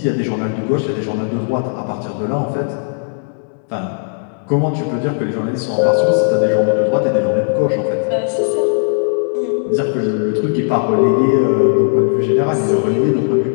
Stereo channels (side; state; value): right; silent; digital silence